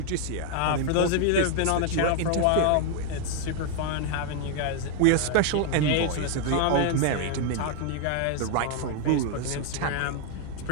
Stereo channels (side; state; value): both; different; correlation 0.00